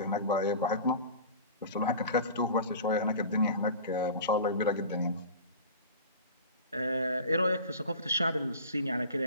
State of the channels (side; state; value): both; inverted; correlation -0.37